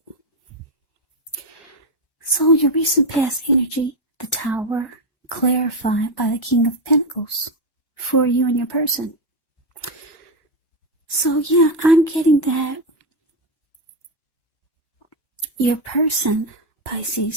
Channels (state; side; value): late; right; 1.1 ms